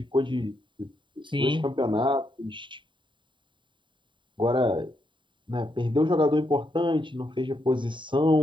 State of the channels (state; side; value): late; left; 0.23 ms